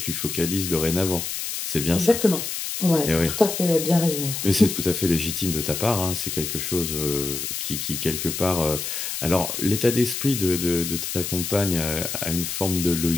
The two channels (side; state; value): left; noise; hiss, 4 dB below the sound